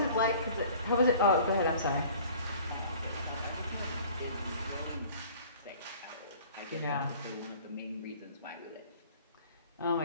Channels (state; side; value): inverted; both; correlation -0.49